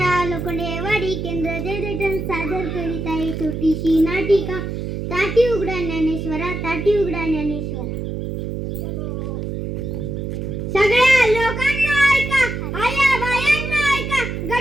लोखंडेवाडी केंद्र जयदेठण सादर करीत आहे छोटीशी नाटिका ताटी उघडा ज्ञानेश्वरा, ताटी उघडा ज्ञानेश्वरा. सगळ्या लोकांना ऐका, आया बायांना ऐका,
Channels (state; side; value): noise; right; hum, 4 dB below the sound